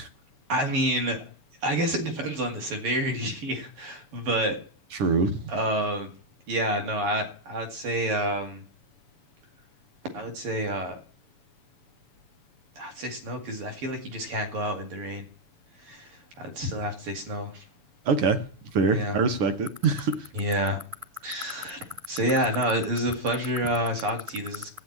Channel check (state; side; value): late; left; 7.0 ms